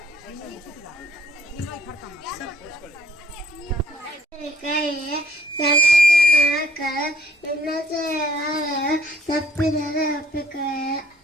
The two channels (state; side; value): normal; both; correlation 0.63